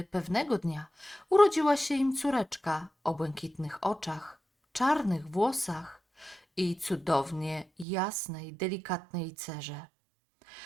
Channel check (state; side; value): drops out; left; at 7.9 s